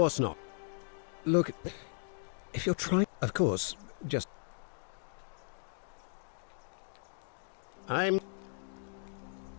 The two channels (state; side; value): silent; right; digital silence